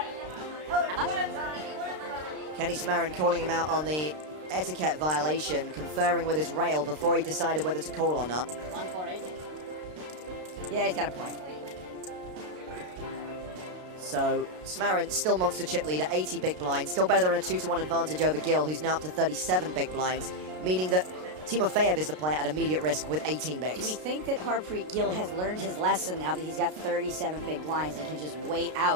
How much? Kenny Smarin calling him out on the etiquette violation, conferring with his rail before he decided whether to call or not. 1-4-8. yeah, he's got a point. So Smarin still monster chip leader, 80 big blinds, still better than a 2-1 advantage over Gil, who's now up to 37 big blinds, meaning that Timofeyev is the player at immediate risk with 18 bigs. Do we think that Harpreet Gill has learned his lesson now that he's got 37 big blinds and can just wait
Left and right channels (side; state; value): left; late; 33 ms